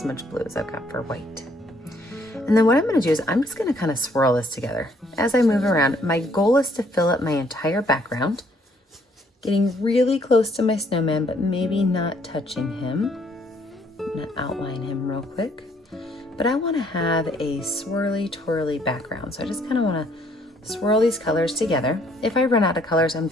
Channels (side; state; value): both; normal; correlation 0.66